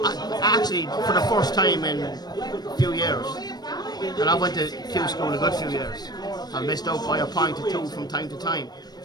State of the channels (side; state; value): right; late; 0.19 ms